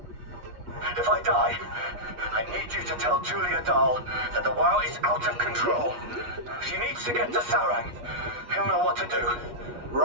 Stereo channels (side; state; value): left; late; 8.3 ms